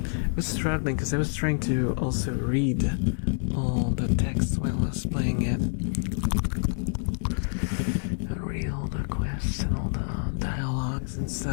was struggling because I was trying to also read all the text while I was playing it. I read all the quests and all the dialogues and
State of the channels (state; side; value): silent; right; digital silence